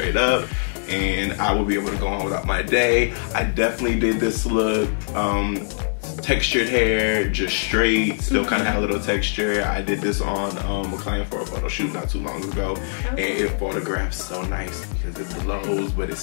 up, and I will be able to go on without my day. I definitely did this look, textured hair, just straight, still kind of had a little texture. I did this on a client for a photo shoot not too long ago, and it photographs so nice because it blows, but it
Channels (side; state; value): right; silent; digital silence